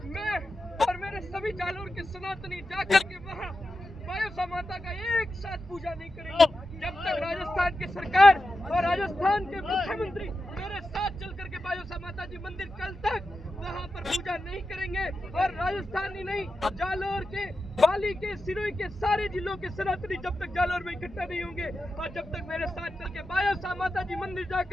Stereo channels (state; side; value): normal; both; correlation 0.91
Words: मैं और मेरे सभी जालोर के सनातनी जाकर के वहाँ बायोसा माता का एक साथ पूजा नहीं करेंगे, जब तक राजस्थान की सरकार और राजस्थान के मुख्यमंत्री मेरे साथ चल करके बायोसा माता जी मंदिर कल तक वहाँ पर पूजा नहीं करेंगे। और राजस्थान ही नहीं, जालोर के, पाली के, सिरोही के सारे जिलों के सनातनी जब तक जालोर में इकट्ठा नहीं होंगे और जब तक मेरे साथ चल के बायोसा माता जी मंदिर